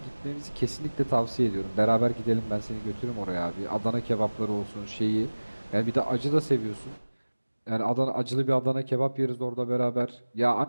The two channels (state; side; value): inverted; both; correlation -1.00